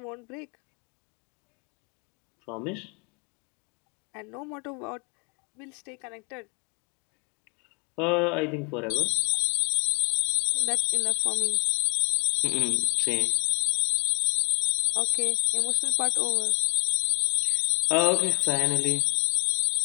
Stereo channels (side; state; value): right; quieter; 35.6 dB